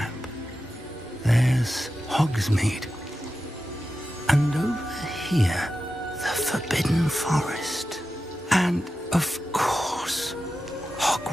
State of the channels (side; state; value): both; normal; correlation 0.92